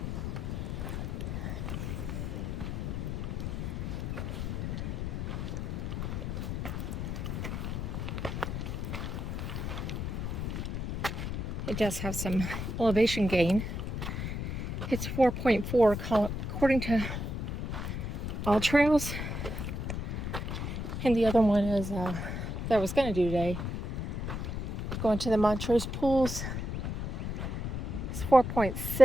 It does have some elevation gain. It's 4.4 according to All Trails. And the other one is that I was going to do today. Going to the Montrose pools. It's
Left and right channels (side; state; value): left; noise; rumble, 3 dB below the sound